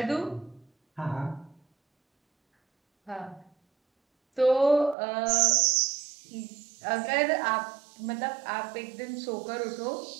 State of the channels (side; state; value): left; drops out; at 5.0 s